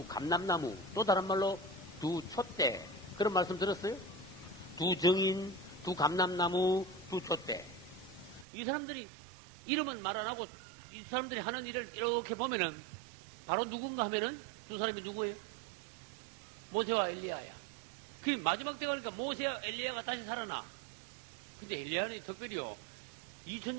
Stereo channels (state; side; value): drops out; left; at 8.5 s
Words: 감람나무, 또 다른 말로 두 촛대, 그런 말씀 들었어요? 두 증인, 두 감람나무, 두 촛대. 이 사람들이 이름은 말 안 하고 이 사람들이 하는 일을 이렇게 보면은 바로 누군가 하면은 두 사람이 누구예요? 모세와 엘리야야. 그 마지막 때 가니까 모세와 엘리야가 다시 살아나. 근데 엘리야는 특별히요.